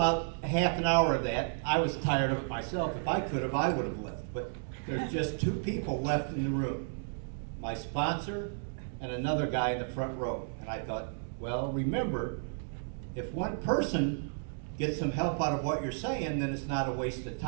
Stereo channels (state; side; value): silent; left; digital silence